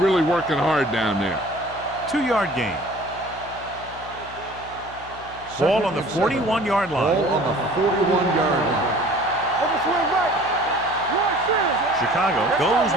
working hard down there. 2-yard gain. Ball on the 41-yard line. Ball on the 41-yard line. Over swing right. Right center. Chicago goes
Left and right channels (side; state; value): left; noise; hum, 19 dB below the sound